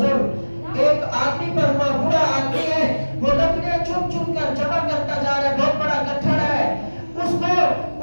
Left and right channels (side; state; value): both; inverted; correlation -1.00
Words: ایک آدمی پر ہوا، بوڑھا آدمی ہے، وہ لکڑیاں چن چن کر جمع کرتا جا رہا ہے، بہت بڑا گٹھڑ ہے، اس کو